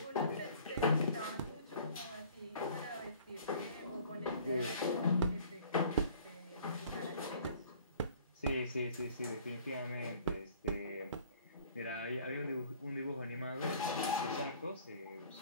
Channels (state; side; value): inverted; both; correlation -0.52